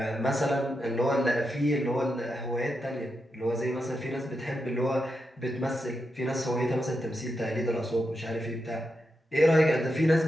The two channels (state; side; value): normal; both; correlation 0.86